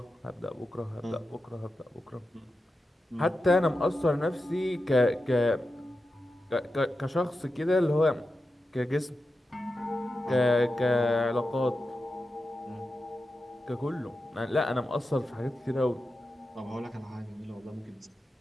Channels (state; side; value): normal; both; correlation 0.91